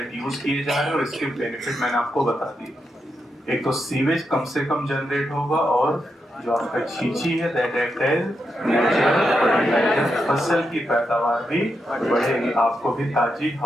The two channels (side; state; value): both; normal; correlation 0.84